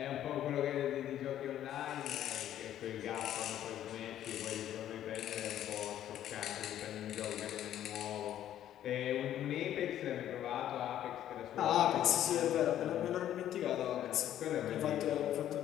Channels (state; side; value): quieter; right; 11.5 dB